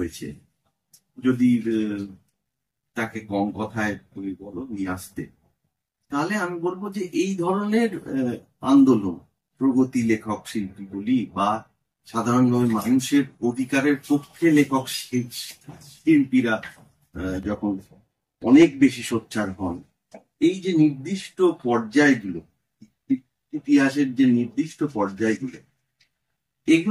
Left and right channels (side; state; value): both; identical; correlation 1.00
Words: যদি তাকে কম কথায় তুমি বলো নিয়ে আসতে, তাহলে আমি বলবো যে এই ধরনের আন্দোলন, প্রগতি লেখক শিল্পী বলি বা সাধারণভাবে মানুষের অধিকারের পক্ষে লেখক শিল্পীরা যখন অনেক বেশি সোচ্চার হন, এই যে নির্দিষ্ট পর্যায়গুলো, ইতিহাসের যে নির্দিষ্ট পর্যায়গুলো,